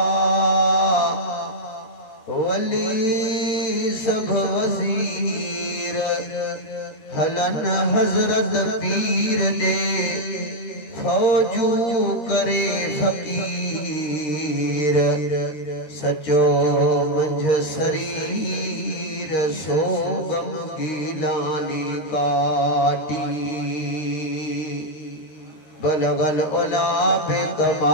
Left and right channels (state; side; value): late; right; 13 ms